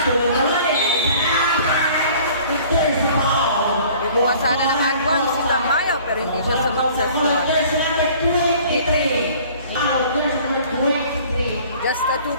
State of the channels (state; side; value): inverted; both; correlation -0.51